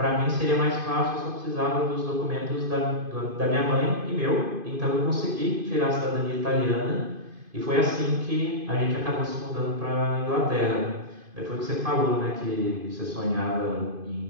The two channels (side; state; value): left; late; 2.5 ms